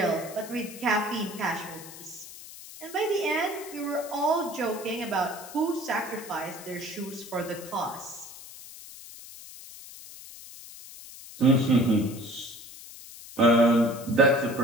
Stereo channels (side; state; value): left; noise; hiss, 15 dB below the sound